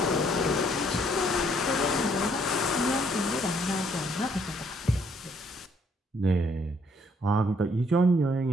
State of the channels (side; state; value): both; normal; correlation 0.67